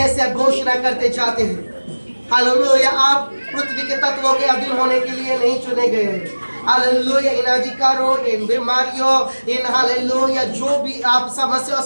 आप घोषणा करते जाते हैं, हालेलुया आप पृथ्वी के तत्वों के अधीन होने के लिए नहीं चुने गए हैं। हालेलुया, इन अधिकारों, इन बीमारियों, इन हालेलुया जो भी आप समस्याओं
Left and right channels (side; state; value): both; inverted; correlation -1.00